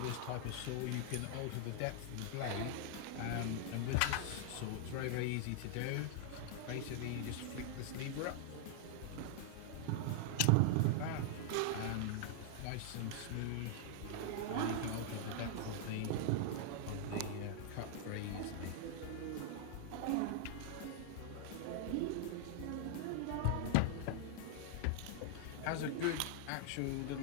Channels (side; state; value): both; different; correlation -0.01